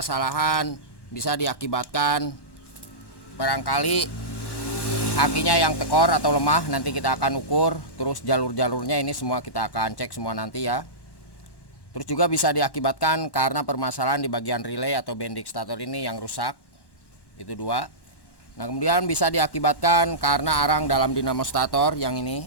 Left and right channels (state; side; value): late; right; 1.1 ms